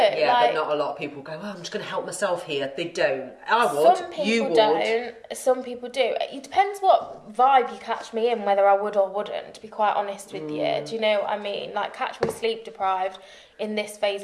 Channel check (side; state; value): both; identical; correlation 1.00